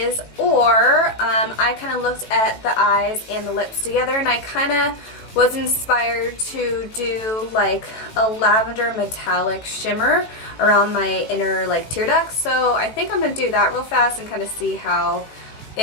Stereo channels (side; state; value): right; late; 18 ms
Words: or I kind of looked at the eyes and the lips together, and I kind of was inspired to do like a lavender metallic shimmer around my inner like tear ducts. So I think I'm going to do that real fast and kind of see how